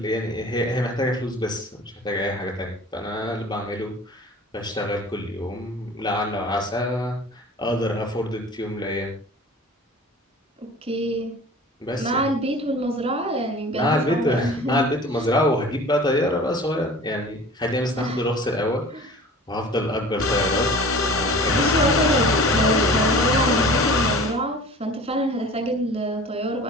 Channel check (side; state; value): both; normal; correlation 0.42